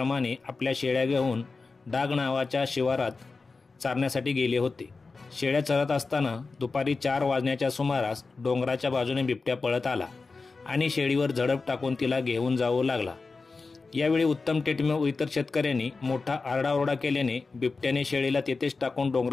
आपल्या शेळ्या घेऊन डाग नावाच्या शिवारात चारण्यासाठी गेले होते. शेळ्या चरत असताना दुपारी 4 वाजण्याच्या सुमारास डोंगराच्या बाजूने बिबट्या पळत आला आणि शेळीवर झडप टाकून तिला घेऊन जाऊ लागला. यावेळी उत्तम तेटमे व इतर शेतकऱ्यांनी मोठा आरडाओरडा केल्याने बिबट्याने शेळीला तेथेच टाकून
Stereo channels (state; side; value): quieter; right; 4.1 dB